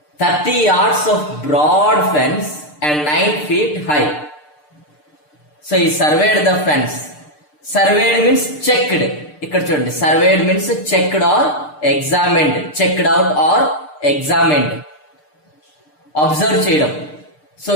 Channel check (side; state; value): right; late; 6.7 ms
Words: 30 yards of broad fence and 9 feet high. So he surveyed the fence. Surveyed means checked. ఇక్కడ చూడండి, surveyed means checked or examined, checked out or examined. Observe చేయడం. So